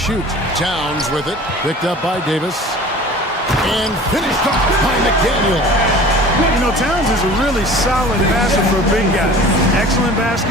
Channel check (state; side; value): normal; both; correlation 0.42